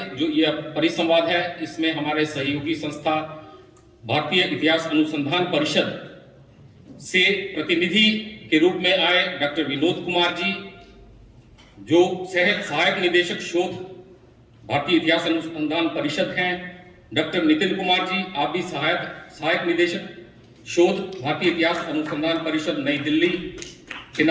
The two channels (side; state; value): both; identical; correlation 1.00